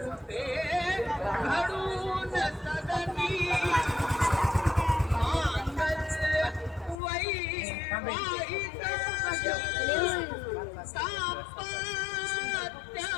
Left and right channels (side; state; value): right; drops out; at 7.0 s